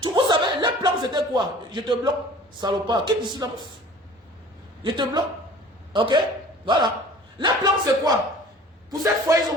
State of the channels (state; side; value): normal; both; correlation 0.46